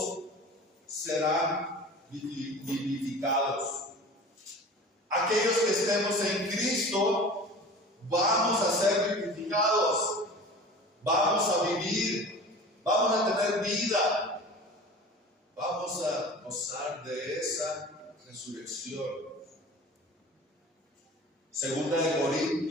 serán vivificados. Aquellos que estemos en Cristo vamos a ser vivificados, vamos a vivir, vamos a tener vida, vamos a gozar de esa resurrección. Segunda de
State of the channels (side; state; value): both; normal; correlation 0.39